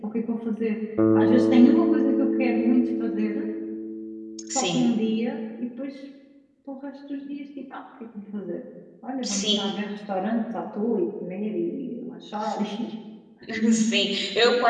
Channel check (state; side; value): identical; both; correlation 1.00